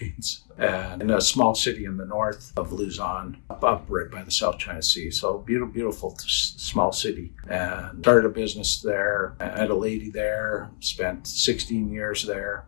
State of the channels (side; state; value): right; silent; 61 dB below the other